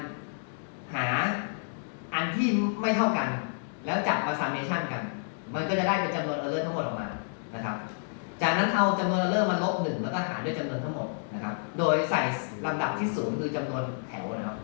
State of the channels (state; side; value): silent; right; digital silence